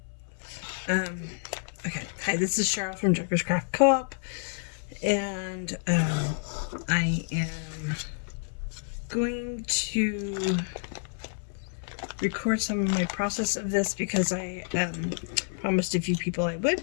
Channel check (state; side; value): silent; right; 59 dB below the other